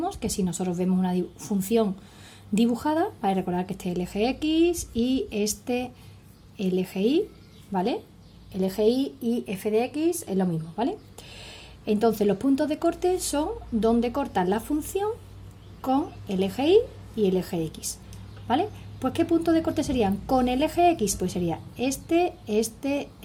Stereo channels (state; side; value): identical; both; correlation 1.00